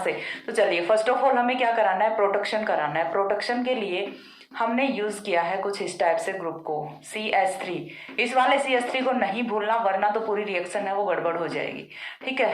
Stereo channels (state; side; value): identical; both; correlation 1.00